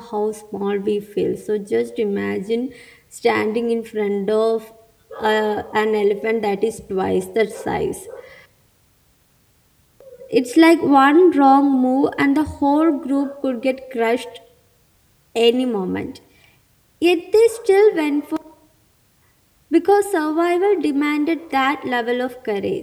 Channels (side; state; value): both; identical; correlation 1.00